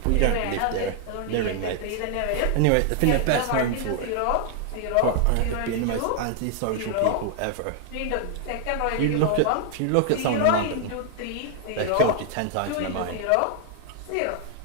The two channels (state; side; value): different; both; correlation 0.00